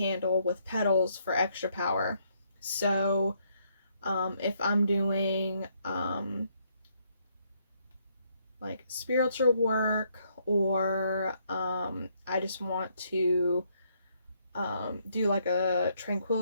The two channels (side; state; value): both; inverted; correlation -0.72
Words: with petals for extra power. So if I'm doing like spiritual work, or I just want to do like a